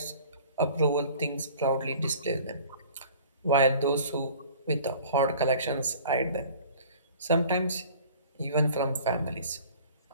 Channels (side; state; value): both; inverted; correlation -0.47